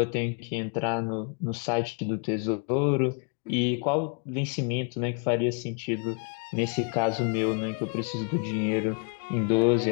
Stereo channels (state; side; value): quieter; right; 39.3 dB